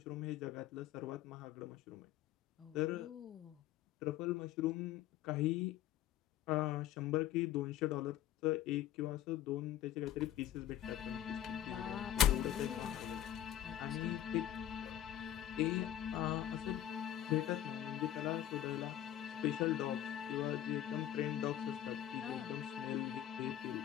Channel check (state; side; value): quieter; right; 11.8 dB